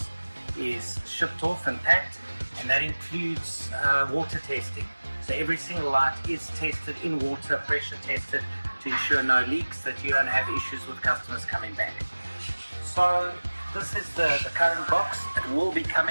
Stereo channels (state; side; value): inverted; both; correlation -1.00